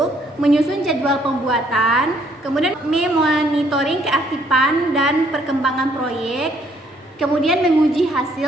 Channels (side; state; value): both; normal; correlation 0.66